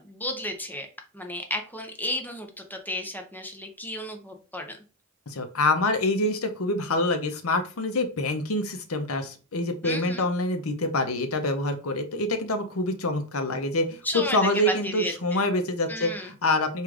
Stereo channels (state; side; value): normal; both; correlation 0.01